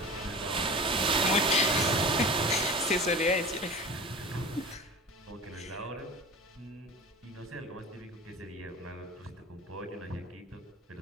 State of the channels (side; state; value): both; normal; correlation 0.35